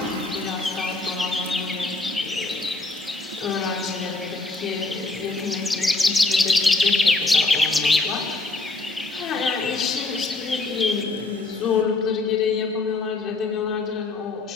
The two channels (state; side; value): quieter; right; 3.3 dB